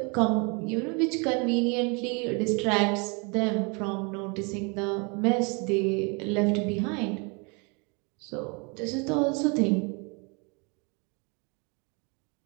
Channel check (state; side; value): quieter; left; 32.2 dB